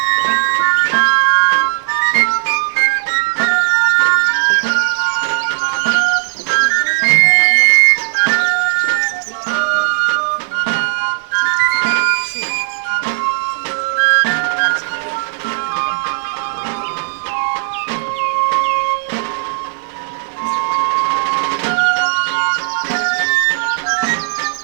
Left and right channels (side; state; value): left; silent; digital silence